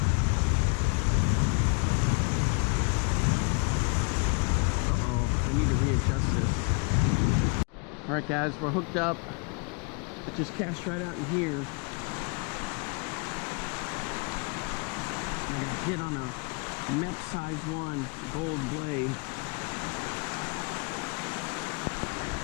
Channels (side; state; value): right; quieter; 34.5 dB